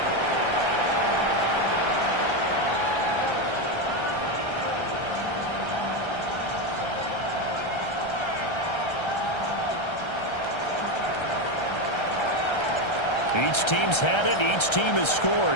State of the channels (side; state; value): right; late; 1.3 ms